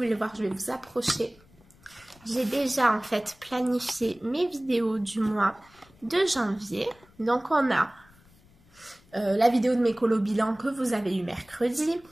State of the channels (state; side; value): noise; left; rumble, 28 dB below the sound